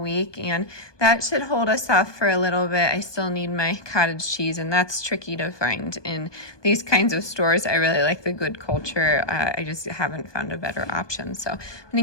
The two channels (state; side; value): late; right; 1.2 ms